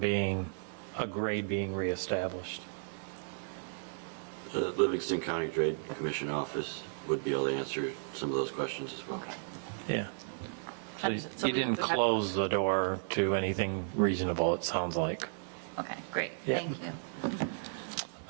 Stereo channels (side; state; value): left; silent; digital silence